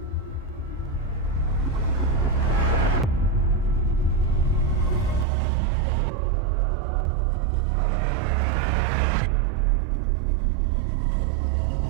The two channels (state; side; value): drops out; left; at 5.2 s